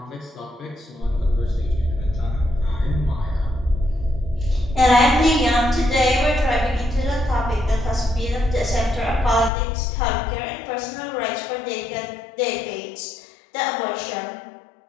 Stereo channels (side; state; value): right; drops out; at 9.5 s